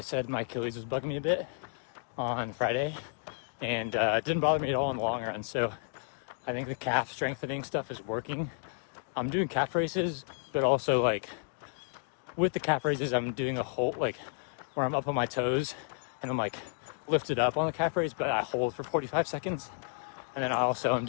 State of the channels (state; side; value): silent; right; digital silence